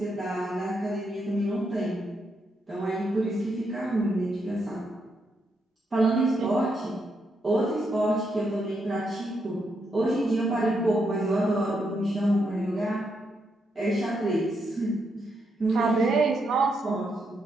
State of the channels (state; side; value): normal; both; correlation 0.80